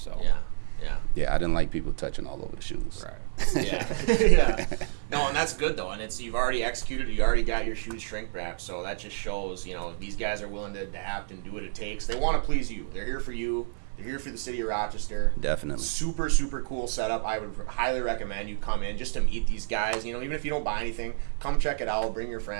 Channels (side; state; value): left; silent; 59 dB below the other